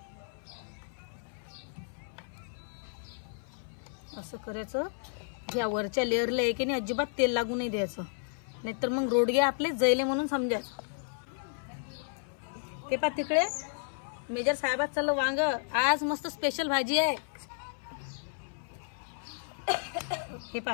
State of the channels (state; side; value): silent; right; 56 dB below the other